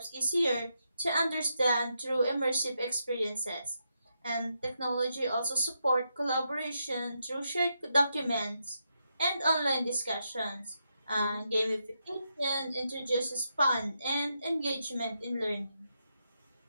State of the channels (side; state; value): both; inverted; correlation -0.83